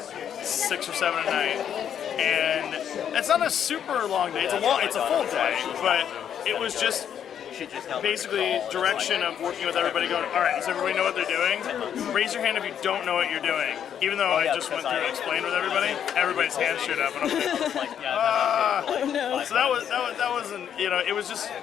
or 7 at night, and it's not a super long day. It's a full day, but it was just basically direction of working with everybody going, all right, does everybody know what they're doing? Raise your hand if you don't know what you're doing. Even though I just went through and explained with everybody, everybody's hands shoot up, and I'm like, Oh no. so that wasn't, it was just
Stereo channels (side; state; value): right; quieter; 9.0 dB